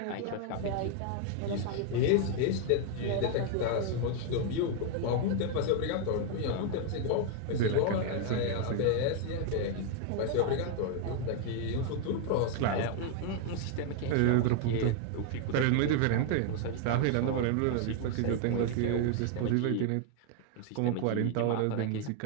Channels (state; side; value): different; both; correlation 0.00